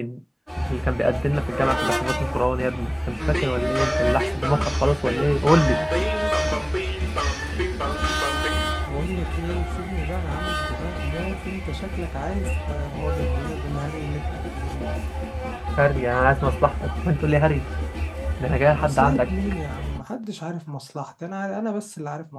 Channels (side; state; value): both; identical; correlation 1.00